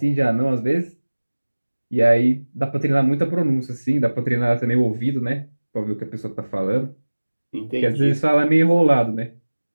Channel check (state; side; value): inverted; both; correlation -1.00